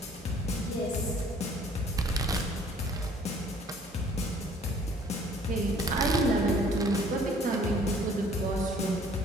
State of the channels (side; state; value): both; normal; correlation 0.56